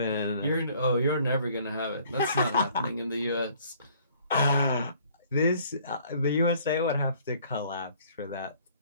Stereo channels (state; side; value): inverted; both; correlation -0.58